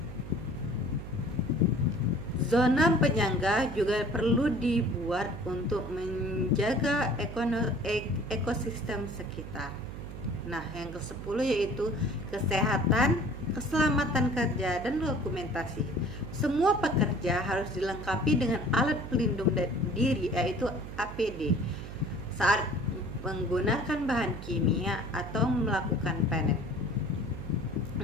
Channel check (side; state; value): right; noise; hum, 10 dB below the sound